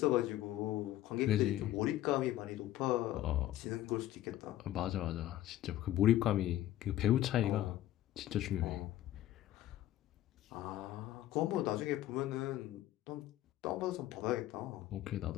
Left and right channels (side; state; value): right; quieter; 13.9 dB